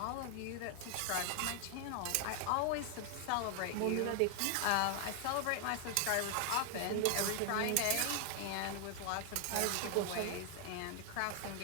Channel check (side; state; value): both; different; correlation 0.00